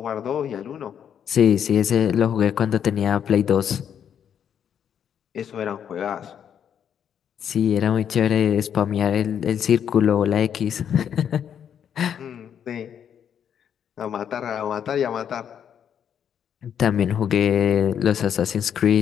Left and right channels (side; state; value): right; quieter; 8.6 dB